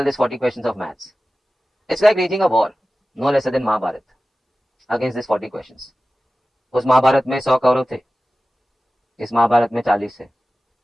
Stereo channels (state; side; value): normal; both; correlation 0.96